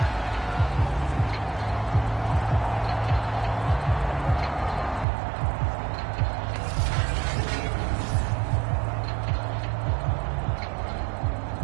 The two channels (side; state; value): left; drops out; at 5.1 s